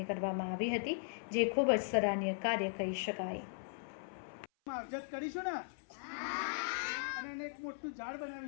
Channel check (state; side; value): silent; right; 52 dB below the other